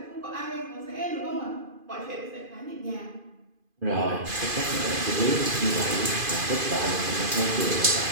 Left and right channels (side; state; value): left; late; 2.5 ms